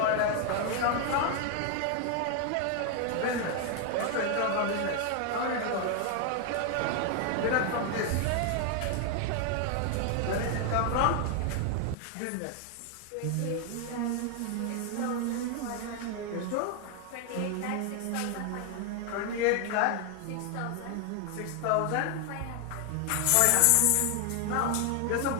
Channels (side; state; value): both; different; correlation 0.00